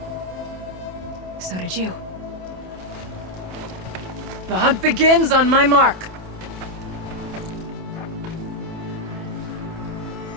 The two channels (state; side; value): late; left; 27 ms